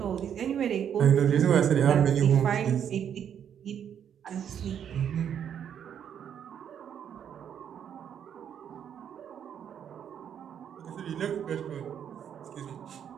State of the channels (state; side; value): quieter; left; 8.8 dB